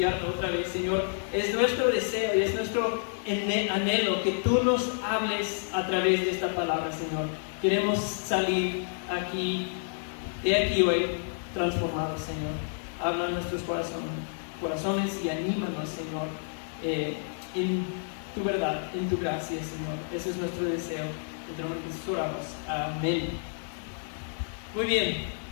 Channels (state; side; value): silent; right; digital silence